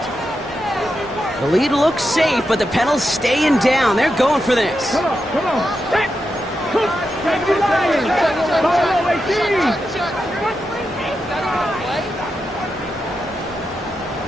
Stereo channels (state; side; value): normal; both; correlation 0.87